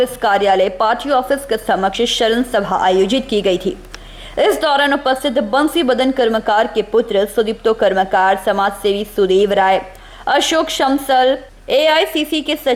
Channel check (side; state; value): both; identical; correlation 1.00